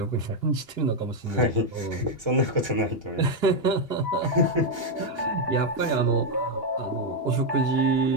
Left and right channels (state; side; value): late; right; 2.8 ms